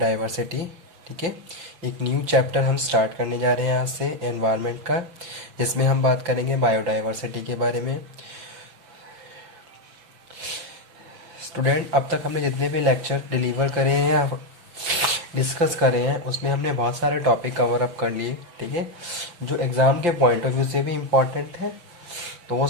ठीक है, एक न्यू चैप्टर हम स्टार्ट करने जा रहे हैं आज से एनवायरनमेंट का, जिसमें हम बात करेंगे बायोडाइवर्सिटी के बारे में। स्टूडेंट, अब तक हमने जितने भी लेक्चर डिलीवर करे हैं, डिस्कस करे हैं, उसमें हमने बहुत सारे टॉपिक कवर अप कर लिए। ठीक है, जो एग्ज़ाम के पॉइंट ऑफ व्यू से भी इम्पॉर्टेंट है, तो वो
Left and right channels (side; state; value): left; late; 5.8 ms